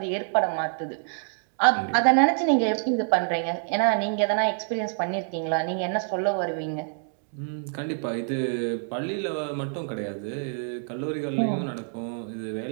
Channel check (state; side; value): silent; left; 60 dB below the other